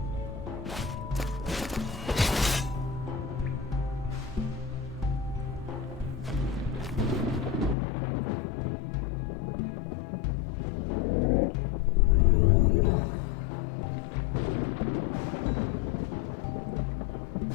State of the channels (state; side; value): drops out; right; at 7.8 s